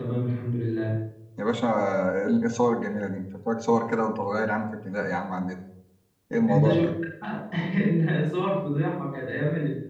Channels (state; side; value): identical; both; correlation 1.00